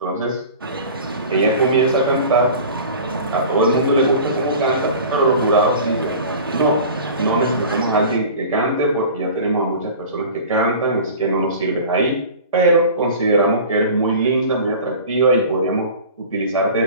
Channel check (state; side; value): inverted; both; correlation -0.39